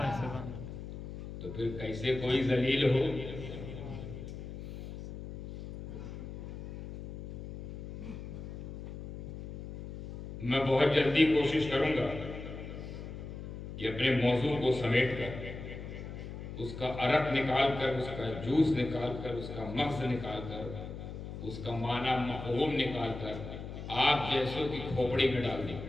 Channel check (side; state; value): left; noise; hum, 9 dB below the sound